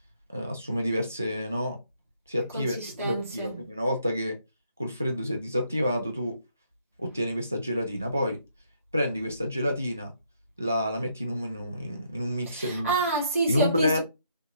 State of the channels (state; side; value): inverted; both; correlation -0.72